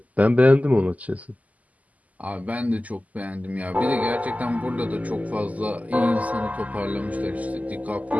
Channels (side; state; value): left; late; 0.075 ms